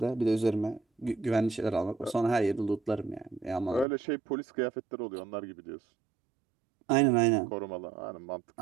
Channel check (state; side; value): drops out; left; at 3.9 s